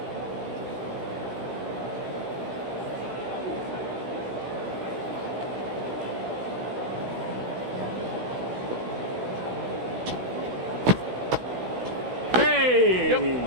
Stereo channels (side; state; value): left; late; 16 ms